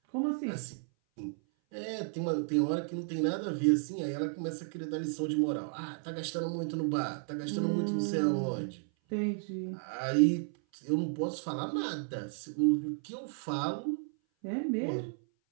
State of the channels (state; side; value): silent; left; 56 dB below the other